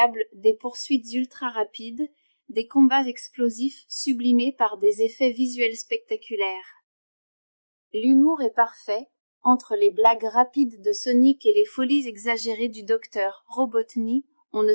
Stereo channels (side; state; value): both; inverted; correlation -1.00